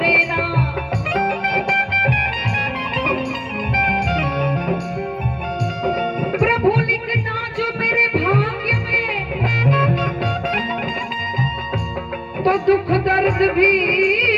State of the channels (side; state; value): both; identical; correlation 1.00